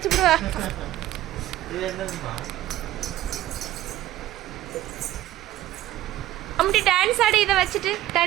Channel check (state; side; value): quieter; left; 14.5 dB